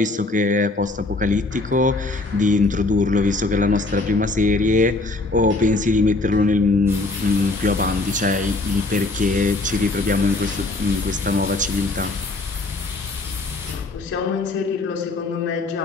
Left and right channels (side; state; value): right; quieter; 3.1 dB